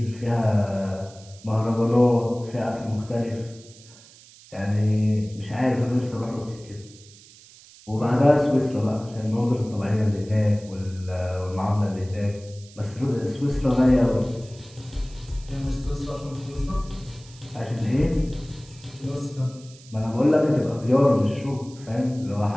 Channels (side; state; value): right; noise; hiss, 22 dB below the sound